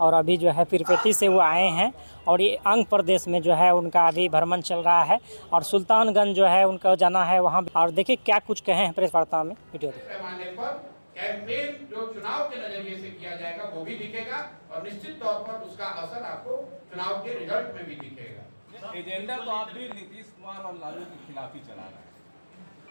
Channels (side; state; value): both; inverted; correlation -1.00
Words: और अभी जो है पीरपेटी से वो आए हैं और ये आंध्र प्रदेश में जो है उनका अभी भ्रमण चल रहा है और सुल्तानगंज जो है उनका जाना है वहाँ। और देखिए क्या कुछ कहे हैं प्रेस वार्ता में, वीडियो पैमाने पर कैंपेन जो चुनाव के नजरिए से किया जाएगा वो भी दिखेगा और निश्चित तौर पर उसका असर आपको चुनाव के रिजल्ट में भी दिखेगा। एजेंडा तो आप भी नीतीश कुमार और लालू के खिलाफ ही चला रहे